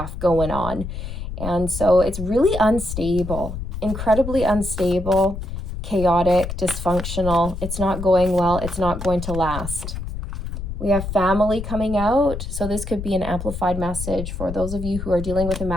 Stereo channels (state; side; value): noise; left; rumble, 7 dB below the sound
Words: going on. And so it's really unstable, incredibly unstable, chaotic, dysfunctional. It's not going well. It's not going to last. We have family coming out. So this could be an amplified message for those of you who are dealing with a